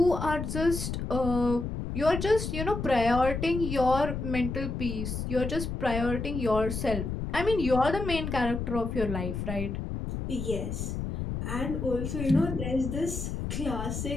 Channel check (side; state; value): left; noise; rumble, 4 dB below the sound